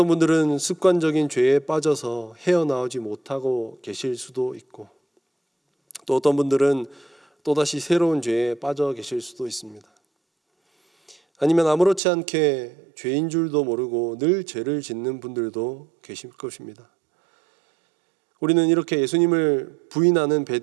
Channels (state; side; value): drops out; left; at 12.0 s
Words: 분들은 습관적인 죄에 빠져서 헤어나오지 못하고 계실 수도 있고, 또 어떤 분들은 또다시 새로운 죄에 빠져 계실 수도 있습니다. 아니면 아무렇지 않게 죄인 줄도 모르고 늘 죄를 짓는 분들도 계실 것입니다. 우리는 이렇게 예수님을 부인하는